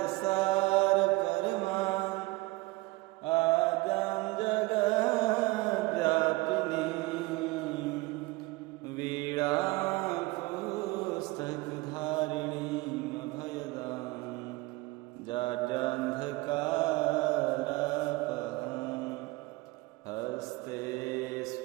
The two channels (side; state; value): left; quieter; 21.8 dB